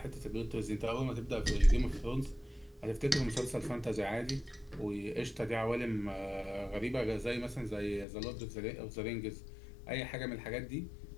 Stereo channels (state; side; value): drops out; right; at 8.1 s